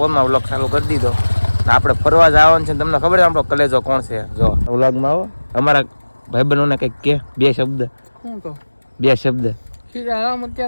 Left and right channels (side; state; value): both; inverted; correlation -1.00